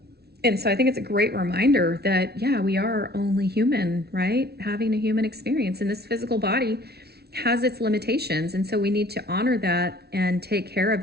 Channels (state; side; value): late; left; 0.47 ms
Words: And so I think it's a great reminder that, yeah, we are only human, right? Having a human experience, and this physical body has its limitations. And so we need to honor that and take care of